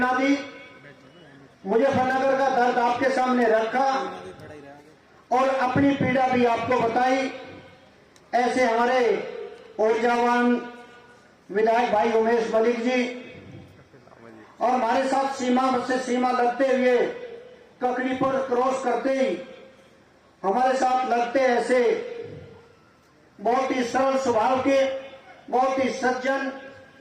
दी। मुजफ्फरनगर का दर्द आपके सामने रखा और अपनी पीड़ा भी आपको बताई। ऐसे हमारे ऊर्जावान विधायक भाई उमेश मलिक जी और हमारे साथ सीमा से सीमा लगते हुए ककड़ी पर क्रॉस करते ही हमारे साथ लगते ऐसे बहुत ही सरल स्वभाव के, बहुत ही सज्जन,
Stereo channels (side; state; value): both; identical; correlation 1.00